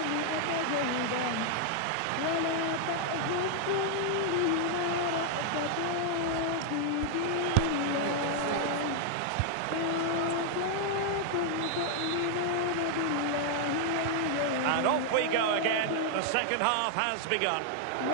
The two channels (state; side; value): different; both; correlation 0.00